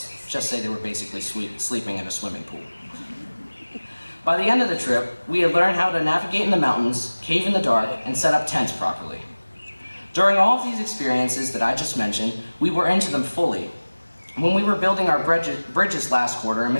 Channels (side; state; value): both; inverted; correlation -1.00